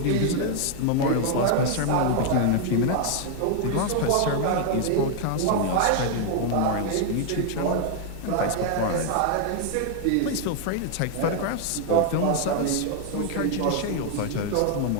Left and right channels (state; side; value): different; both; correlation 0.00